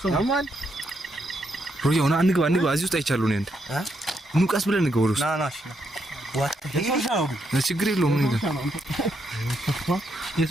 ማን ሮዮ ና እንግባ እዚህ ውስጥ አይቻለሁ ነው እንዴ ኑቃስ ብለን እንግባ ወሩስ ናናሽ ዋት ችግር የለውም ምን ይላል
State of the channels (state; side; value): normal; both; correlation 0.78